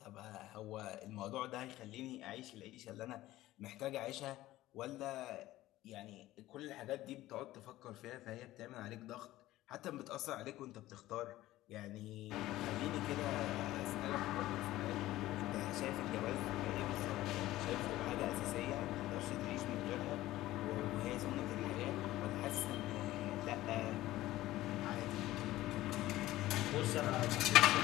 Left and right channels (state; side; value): quieter; right; 16.0 dB